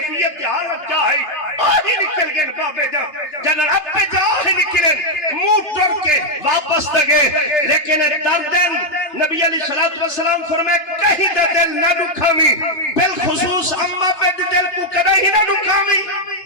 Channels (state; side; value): late; right; 2.9 ms